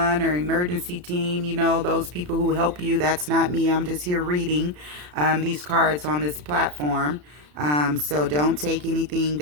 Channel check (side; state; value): left; late; 34 ms